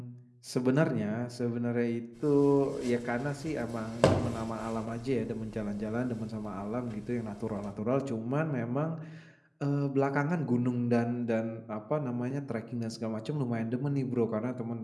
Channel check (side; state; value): both; identical; correlation 1.00